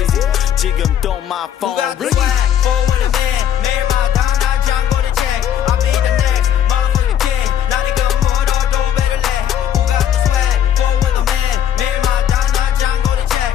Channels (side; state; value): right; quieter; 9.9 dB